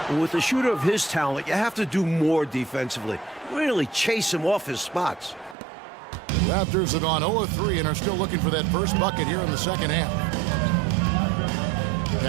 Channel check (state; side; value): drops out; left; at 5.6 s